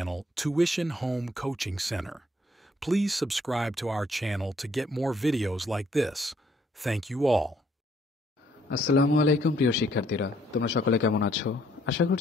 Tuition Home Coaching Center. Please subscribe to our channel to get more videos like this. Thank you all. আসসালামু আলাইকুম প্রিয় শিক্ষার্থীরা, তোমরা সকলে কেমন আছো? আশা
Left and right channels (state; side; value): normal; both; correlation 0.66